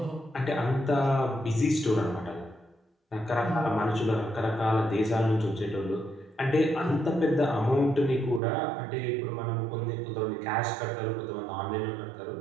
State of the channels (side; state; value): left; drops out; at 8.4 s